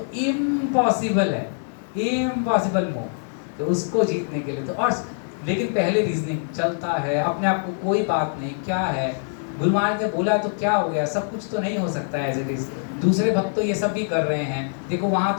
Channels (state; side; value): silent; right; digital silence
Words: इम्पॉसिबल है, इम्पॉसिबल मोह, तो उसको जीतने के लिए तो और, लेकिन पहले रीजनिंग चलता है अपने आप को, कोई बात नहीं, क्या है गुरु महाराज ने बोला तो क्या हो गया, सब कुछ तो नहीं हो सकता है एज इट इज, दूसरे भक्त तो ये सब भी कर रहे हैं, देखो वहाँ